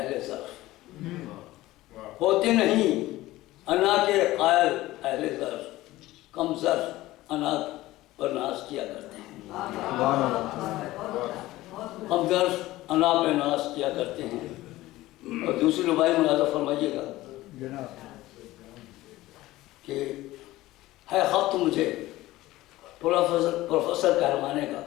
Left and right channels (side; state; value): right; quieter; 17.2 dB